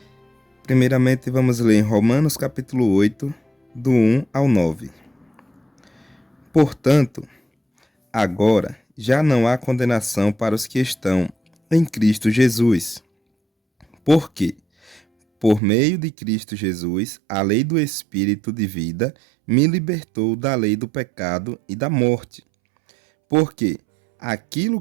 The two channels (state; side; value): drops out; left; at 15.6 s